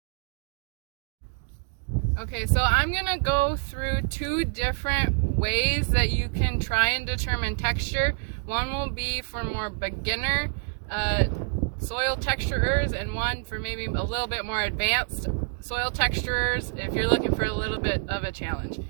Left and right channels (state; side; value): quieter; left; 40.0 dB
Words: Okay, so I'm going to go through two different ways that you can try and determine texture. One will be for more beginner soil texturers, and one for maybe a little bit more advanced soil texturers if you're looking for a little bit of a challenge.